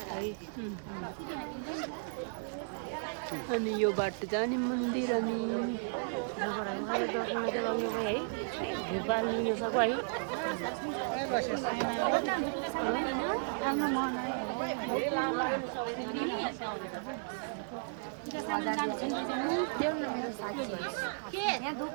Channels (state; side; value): silent; left; digital silence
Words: अनि यो बाटो जाने मन्दिर अनि